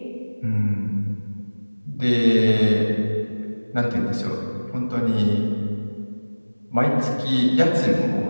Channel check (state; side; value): inverted; both; correlation -1.00